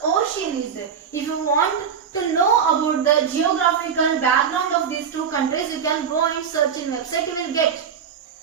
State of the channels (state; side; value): quieter; left; 7.1 dB